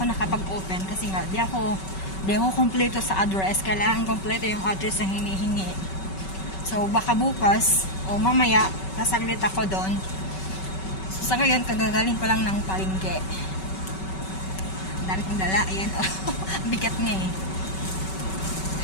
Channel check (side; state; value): right; late; 5.3 ms